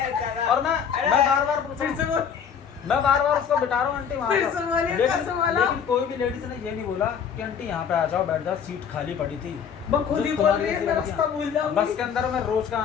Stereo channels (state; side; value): quieter; right; 7.4 dB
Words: और मैं बार बार फिर से बोल। मैं बार बार उसको बिठा रहा हूँ आंटी वहाँ फिर जाओ। से बोलिए, कैसे बोला? लेकिन कोई भी लेडीज ने ये नहीं बोला कि आंटी यहाँ पे आ जाओ बैठ जाओ, सीट खाली पड़ी थी। वो खुद ही बोल रही है मैं रास्ता भूल जाऊंगी। बस के अंदर मैं रोज का